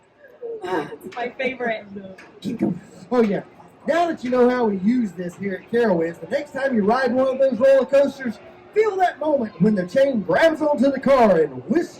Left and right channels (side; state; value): both; identical; correlation 1.00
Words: It's my favorite. Keep going. Oh yeah. Now that you know how we use this here at Carowinds, the next time you ride one of those roller coasters, feel that moment when the chain grabs onto the car and